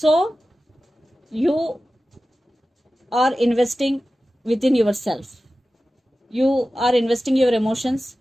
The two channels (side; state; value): both; normal; correlation 0.95